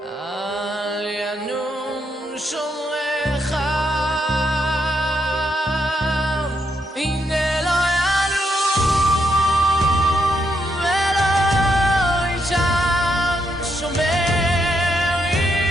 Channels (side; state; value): both; normal; correlation 0.78